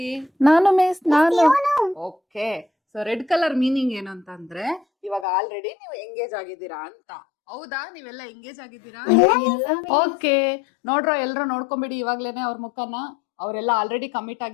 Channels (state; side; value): drops out; right; at 5.2 s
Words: ನಾನು ಮಿಸ್, ನಾನು. Okay, so red colour meaning ಏನು ಅಂತಂದ್ರೆ ಇವಾಗ ಆಲ್ರೆಡಿ ನೀವು ಎಂಗೇಜ್ ಆಗಿದ್ದೀರಾ ಅಂತ. ಹೌದಾ? ನೀವೆಲ್ಲ ಎಂಗೇಜ್ ಆಗಿದ್ದೀರಾ? ಓಕೆ, ನೋಡ್ರೋ ಎಲ್ರು ನೋಡ್ಕೊಂಬಿಡಿ ಇವಾಗ್ಲೇನೆ ಅವ್ರ ಮುಖನ. ಅವರೆಲ್ಲ ಆಲ್ರೆಡಿ ಕಮಿಟ್